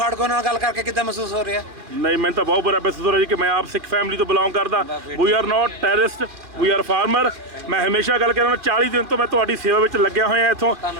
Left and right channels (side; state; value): left; late; 2.4 ms